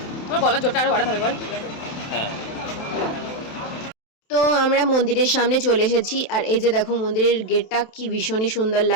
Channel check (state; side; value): late; right; 28 ms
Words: আমার গলার জোরটা আরো বাড়াতে হবে বল। তো আমরা মন্দিরের সামনে চলে এসেছি, আর এই যে দেখো মন্দিরের গেটটা কি ভীষণই সুন্দর